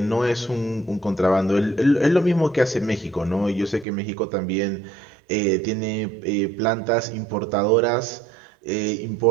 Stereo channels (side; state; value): left; drops out; at 3.9 s